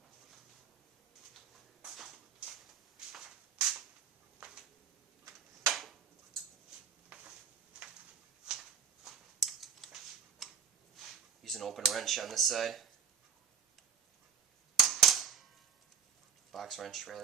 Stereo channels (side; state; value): left; quieter; 7.0 dB